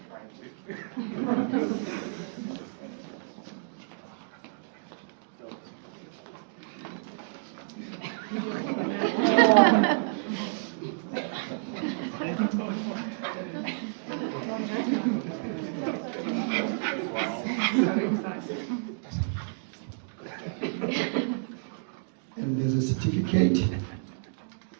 And there's a certificate.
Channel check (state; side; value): silent; left; digital silence